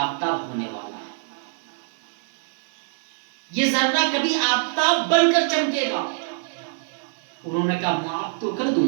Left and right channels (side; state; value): left; silent; digital silence